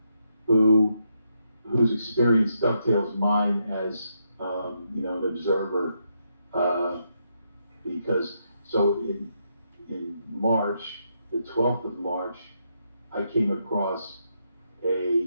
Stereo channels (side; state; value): both; inverted; correlation -0.80